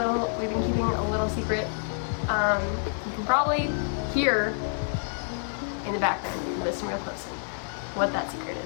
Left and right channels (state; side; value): silent; right; digital silence